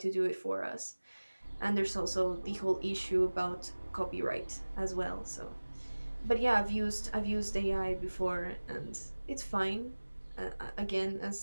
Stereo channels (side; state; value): both; inverted; correlation -1.00